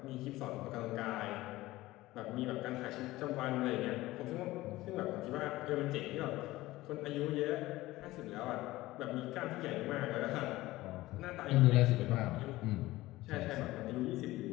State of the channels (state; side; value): quieter; right; 17.9 dB